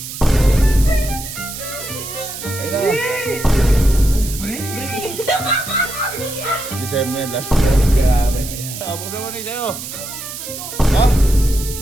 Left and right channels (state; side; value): noise; right; hiss, 9 dB below the sound